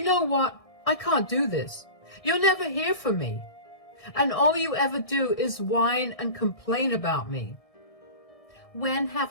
know what? I can't do this. You'll never hear from me. And all you ever do is whine and complain about me. When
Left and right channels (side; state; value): right; late; 1.6 ms